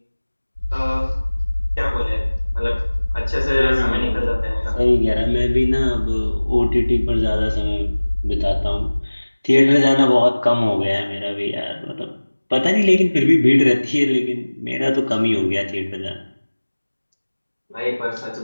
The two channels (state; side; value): inverted; both; correlation -1.00